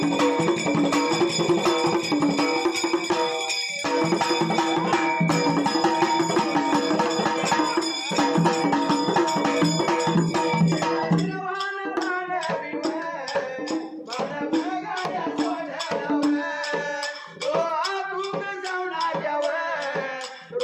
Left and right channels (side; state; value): both; identical; correlation 1.00